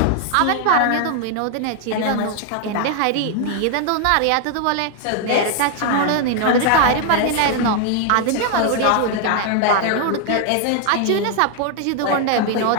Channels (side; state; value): both; different; correlation 0.00